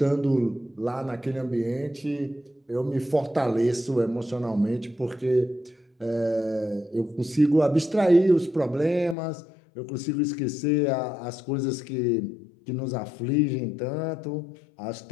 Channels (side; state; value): right; drops out; at 9.2 s